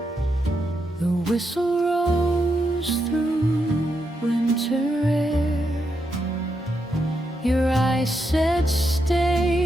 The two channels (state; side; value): normal; both; correlation 0.83